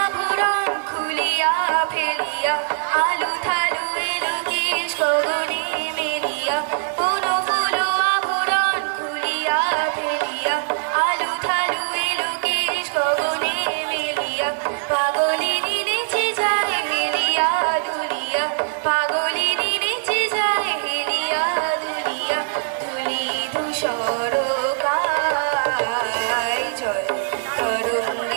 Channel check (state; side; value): silent; left; digital silence